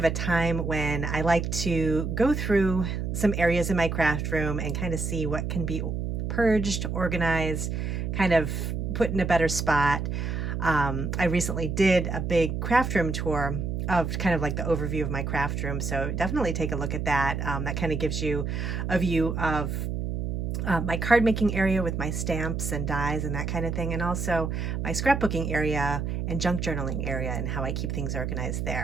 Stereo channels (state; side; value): noise; right; hum, 2 dB below the sound